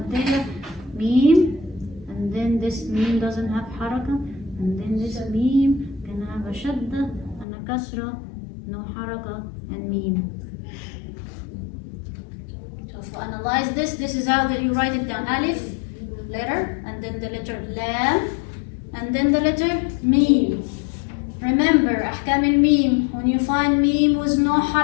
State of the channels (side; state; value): right; drops out; at 7.5 s